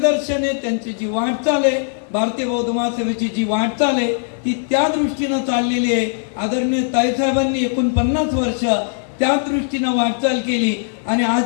आहे, त्यांची जी वाटचाल आहे, भारतीय बौद्ध महासभेची जी वाटचाल आहे ती त्या दृष्टीनं चाललेली आहे. आदरणीय ताईसाहेबांनी 49 वर्ष त्या दृष्टीनं वाटचाल केली. आणि आज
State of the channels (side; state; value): right; silent; digital silence